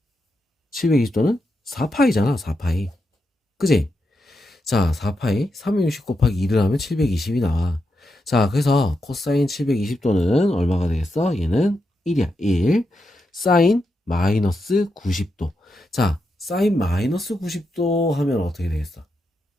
720도는 4파이잖아, 4파이. 그지? 자, 4파이 360 곱하기 2를 하면 720이 나와. 자, 그래서 코사인 720도는 얼마가 되겠어? 얘는 1이야. 1. 사인 마이너스 90도. 자, 사인 마이너스 90도 하면 어떻게 되겠어?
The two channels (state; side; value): normal; both; correlation 0.85